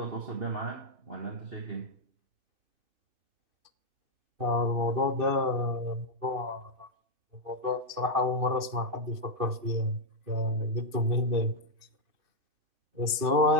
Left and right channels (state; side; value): late; left; 2.6 ms